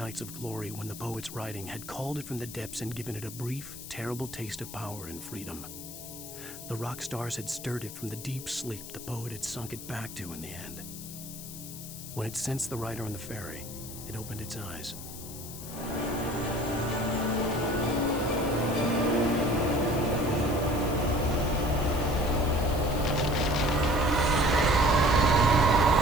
of glory when the poet's writing had called it from the depths and given it a brief, terrible taste of power and freedom. The rock stars had stirred it from the deep sleep the poet had sunk it back to in the end. When it sensed the writer on the ferry, it opened its eyes.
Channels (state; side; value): noise; left; hiss, 12 dB below the sound